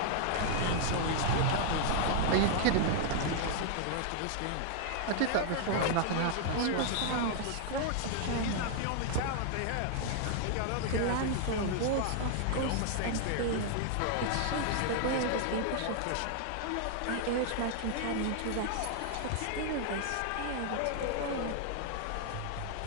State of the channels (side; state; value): both; different; correlation -0.01